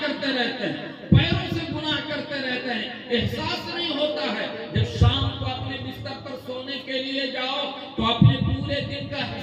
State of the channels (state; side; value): identical; both; correlation 1.00